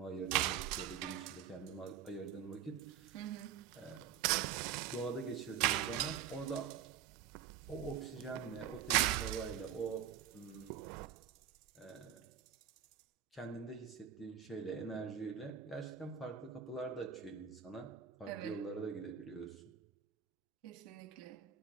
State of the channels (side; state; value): left; quieter; 8.9 dB